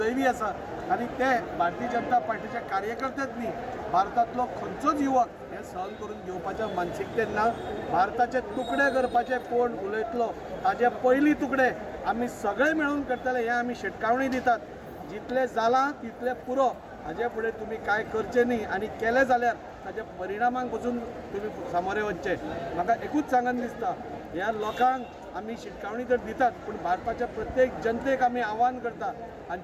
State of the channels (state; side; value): identical; both; correlation 1.00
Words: आसा। आनी ते भारतीय जनता पार्टीचे कार्यकर्तेच न्ही, भारतांतलो खंयचोच युवक हे सहन करून घेवपाच्या मानसिकतेन ना। भारताचे तुकडे करपाचे कोण उलयतलो ताजे पयलीं तुकडे आमी सगळे मेळून करतले हे आमी शिटकावणी दितात। जितले जाला तितले पुरो, हाजे फुडें तुमी कांय करचें न्ही, आनी केलें जाल्यार ताच्या परिणामांक पसून तुमी सामोरे वचचे। म्हाका एकूच सांगन दिसता, ह्या लोकांक आमी शिटकावणी तर दितात, पूण भारताच्या प्रत्येक जनतेक आमी आव्हान करता,